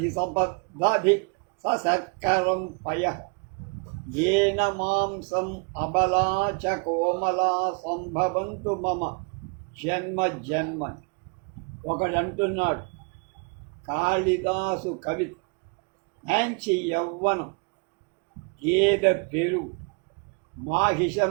సబద్ధి సశర్కరం పయః ఏన మాంసం అబలా చ కోమలా సంభవంతు మమ జన్మ జన్మ. ఒకడంటున్నాడు, కాళిదాసు కవి మంచి యవ్వనం, గేదె పెరుగు,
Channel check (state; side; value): quieter; left; 34.1 dB